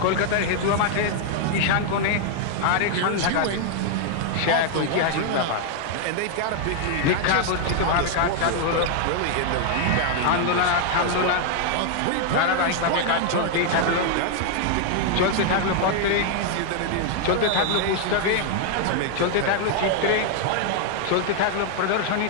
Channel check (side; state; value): both; different; correlation 0.00